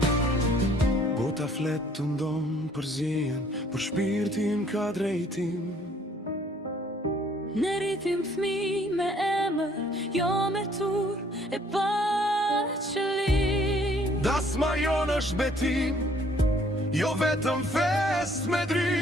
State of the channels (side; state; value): both; normal; correlation 0.61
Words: Bota flet të ndonë për zjen, për shpirtin ka drejtim. Ne rritim fmi me emër, jo me tur e pa qëllim. Dasma jonë është betim, jo vetëm fest me